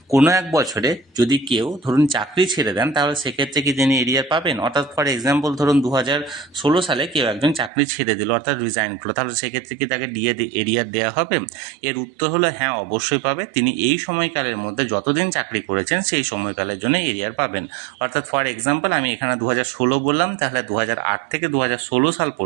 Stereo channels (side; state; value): left; drops out; at 7.7 s